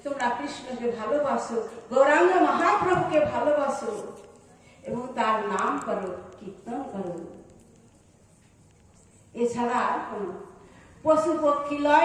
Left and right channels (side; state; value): both; identical; correlation 1.00